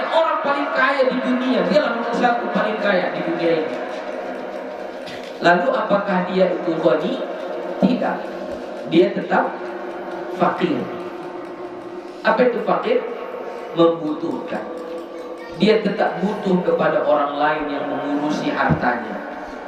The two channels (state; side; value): identical; both; correlation 1.00